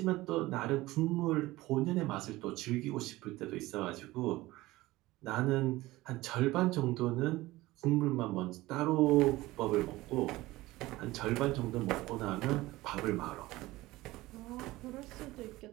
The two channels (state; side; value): quieter; left; 18.6 dB